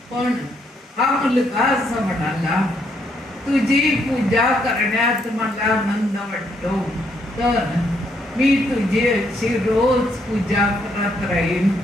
पण हा मुलगा असं म्हणाला, तुझी पूजा करण्यात मला आनंद वाटतो, तर मी तुझी अशी रोज पूजा करत राहीन,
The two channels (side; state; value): both; normal; correlation 0.73